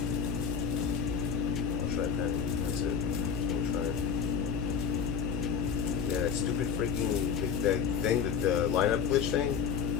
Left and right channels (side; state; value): right; quieter; 6.9 dB